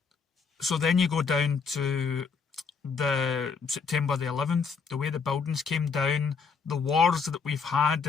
the September the 11th, the way the buildings came down, the wars that we've had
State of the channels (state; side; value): quieter; right; 5.4 dB